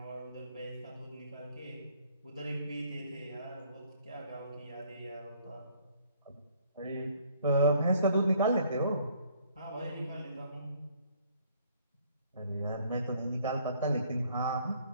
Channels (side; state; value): both; inverted; correlation -0.61